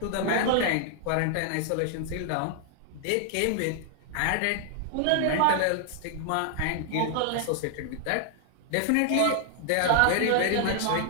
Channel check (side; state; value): both; different; correlation 0.00